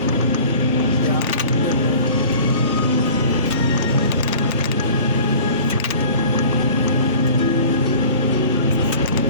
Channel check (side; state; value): both; inverted; correlation -0.44